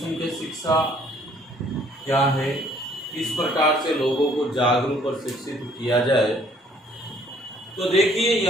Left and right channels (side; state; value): both; normal; correlation 0.61